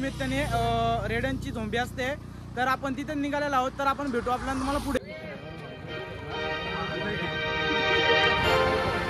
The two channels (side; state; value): both; identical; correlation 1.00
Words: रेड्यांची झोंबी असते, तर आपण तिथे निघालेलो आहोत। तर आपण भेटू आपल्याला तुम्हाला पुढे।